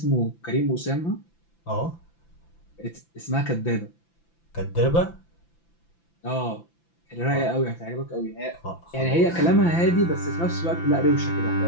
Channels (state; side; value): late; right; 5.9 ms